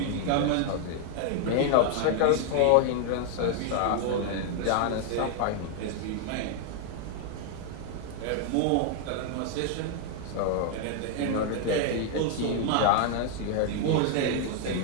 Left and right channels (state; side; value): different; both; correlation 0.00